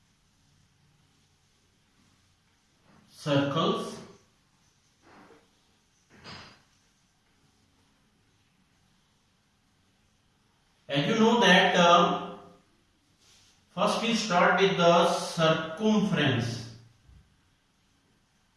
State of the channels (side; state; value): both; identical; correlation 1.00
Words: circles. As you know that first we start with the circumference.